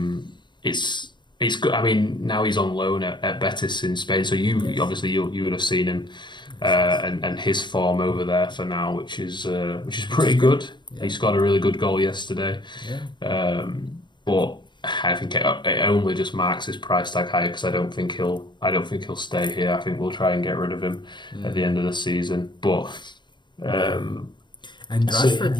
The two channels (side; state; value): right; late; 0.22 ms